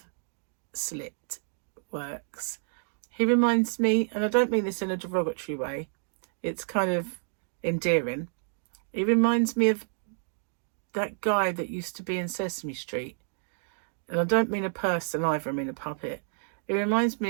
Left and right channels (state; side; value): silent; left; digital silence